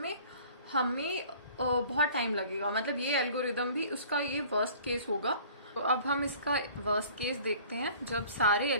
हमें बहुत टाइम लगेगा, मतलब ये एल्गोरिदम भी उसका ये वर्स्ट केस होगा। तो अब हम इसका वर्स्ट केस देखते हैं जब सारे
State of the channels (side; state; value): both; inverted; correlation -0.49